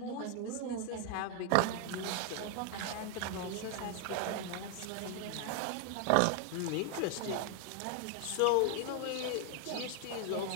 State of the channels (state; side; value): different; both; correlation 0.00